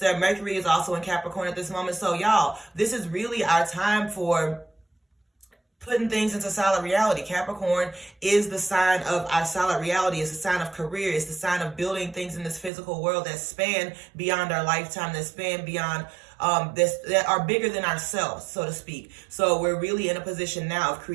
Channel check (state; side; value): drops out; left; at 12.7 s